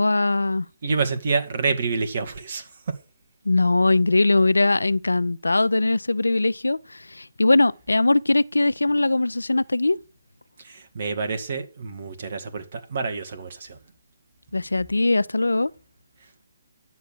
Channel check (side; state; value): both; inverted; correlation -0.95